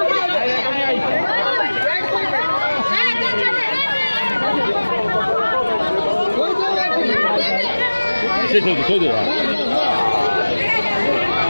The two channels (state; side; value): inverted; both; correlation -1.00